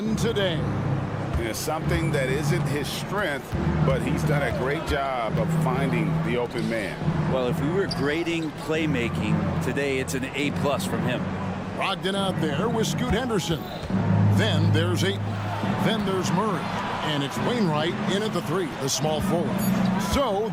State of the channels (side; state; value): both; identical; correlation 1.00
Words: today. It's something that isn't his strength, but he's done a great job of finding the open man. Well, if we were grading playmaking today, it's an A+ from him. Brogdon out there with Scoot Henderson. Then there's Ayton. Then there's Murray. And it's Wainwright in at the 3, the small forward. So